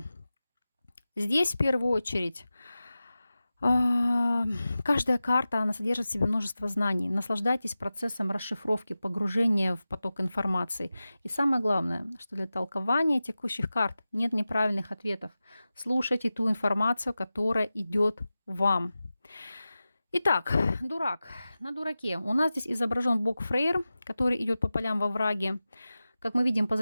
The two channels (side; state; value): both; inverted; correlation -0.95